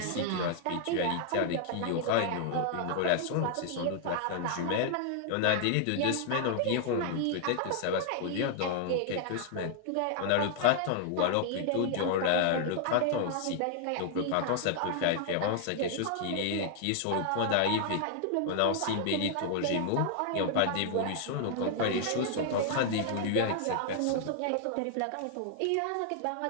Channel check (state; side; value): different; both; correlation 0.00